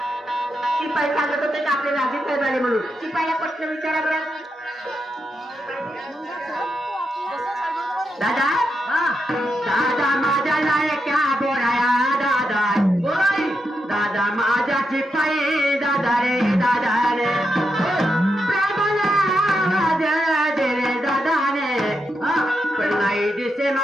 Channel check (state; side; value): normal; both; correlation 0.85